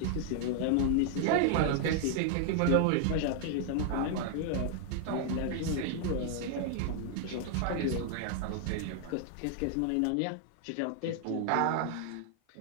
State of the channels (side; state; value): both; different; correlation 0.00